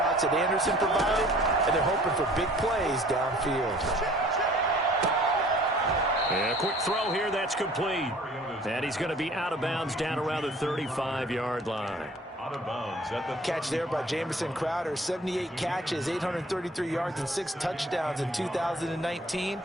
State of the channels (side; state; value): both; normal; correlation 0.52